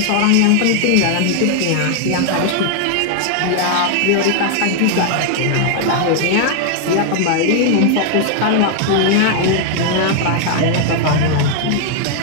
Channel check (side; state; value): both; different; correlation 0.00